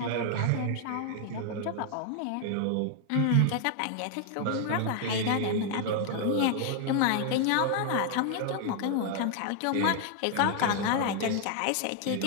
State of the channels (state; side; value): different; both; correlation 0.00